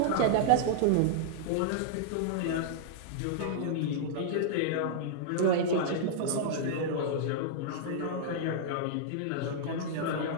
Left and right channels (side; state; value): both; different; correlation -0.01